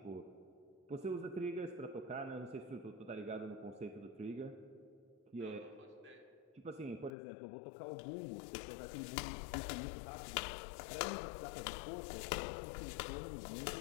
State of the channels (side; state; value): right; drops out; at 7.1 s